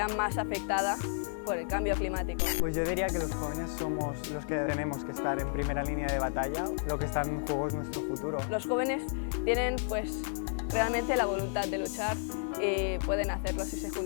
más afectada por el cambio climático. Pues yo diría que los jóvenes somos los que tenemos que estar en primera línea de batalla, lo que está en juego es nuestro futuro. Los jóvenes tienen pues realmente la voluntad de luchar y pueden hacerlo si se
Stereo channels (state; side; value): silent; right; 56 dB below the other